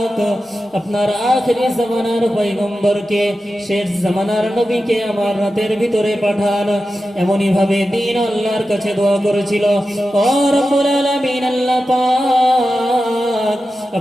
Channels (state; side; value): normal; both; correlation 0.92